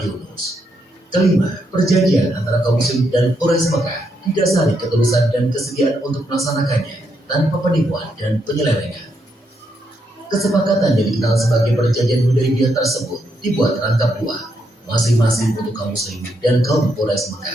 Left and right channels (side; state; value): both; normal; correlation 0.79